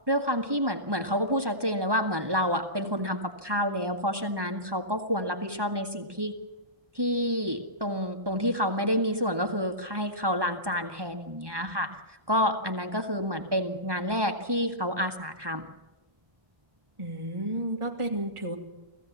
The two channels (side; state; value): left; late; 1.2 ms